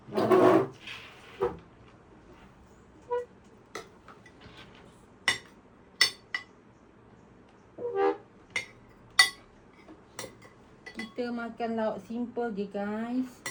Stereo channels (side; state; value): both; identical; correlation 1.00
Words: Kita makan lauk simple je guys.